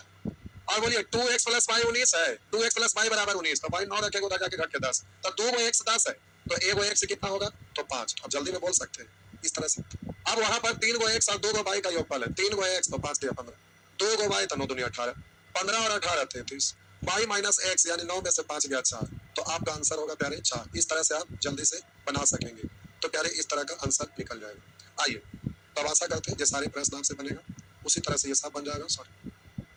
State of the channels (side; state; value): both; identical; correlation 1.00